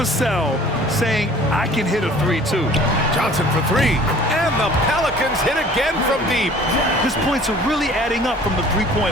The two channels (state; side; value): normal; both; correlation 0.49